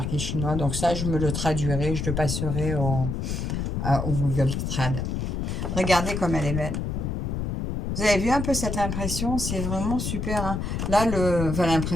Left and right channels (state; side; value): noise; left; rumble, 2 dB below the sound